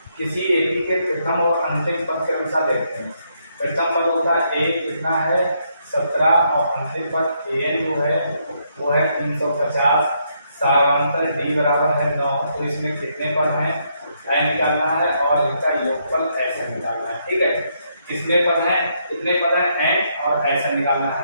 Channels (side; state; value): both; inverted; correlation -0.75